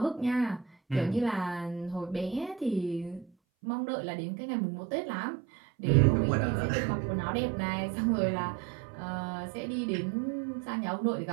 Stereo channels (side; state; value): left; drops out; at 3.3 s